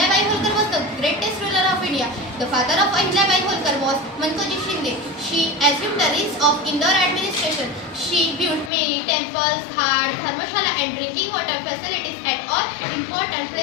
Holkar was the greatest ruler of India. The father of Ahilyabai Holkar was Mankoji Shinde. She assumed the reins of Indore administration. She built many temples, ghats, dharmashala and drinking water facilities at all important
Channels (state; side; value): drops out; right; at 8.7 s